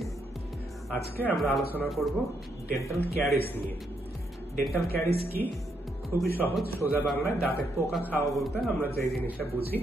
আজকে আমরা আলোচনা করব ডেন্টাল ক্যারিস নিয়ে। ডেন্টাল ক্যারিস কি? খুবই সহজ, সোজা বাংলায় দাঁতে পোকা খাওয়া বলতে আমরা যে জিনিসটা বুঝি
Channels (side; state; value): both; normal; correlation 0.77